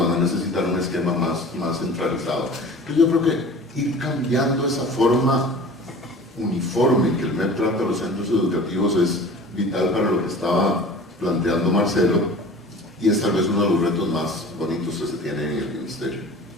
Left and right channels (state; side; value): normal; both; correlation 0.41